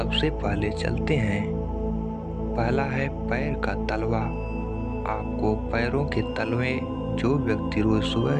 पहले चलते हैं। पहला है पैर का तलवा। आपको पैरों के तलवे, जो व्यक्ति रोज सुबह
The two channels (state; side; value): identical; both; correlation 1.00